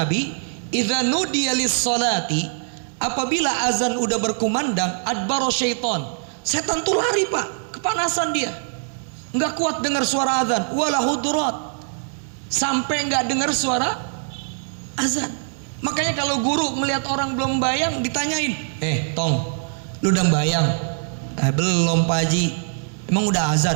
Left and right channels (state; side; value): silent; left; digital silence